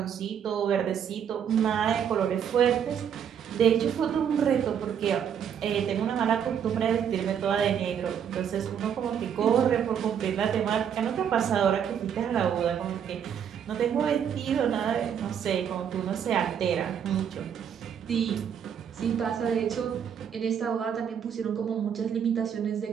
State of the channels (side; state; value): left; quieter; 8.3 dB